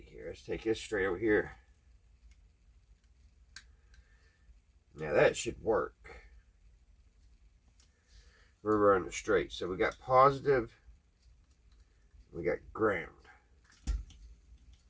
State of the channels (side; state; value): both; identical; correlation 1.00